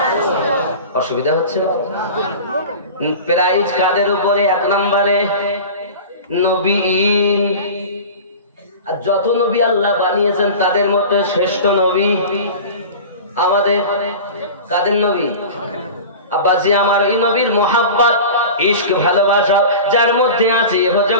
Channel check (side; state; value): both; inverted; correlation -0.34